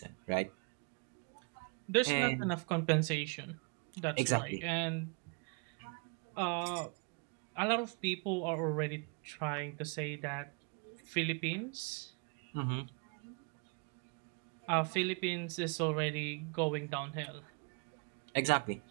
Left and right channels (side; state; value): left; quieter; 34.7 dB